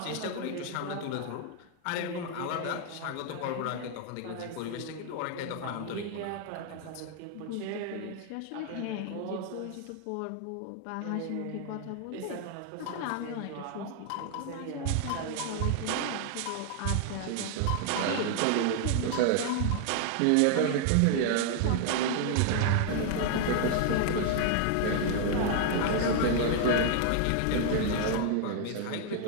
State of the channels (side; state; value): both; different; correlation 0.00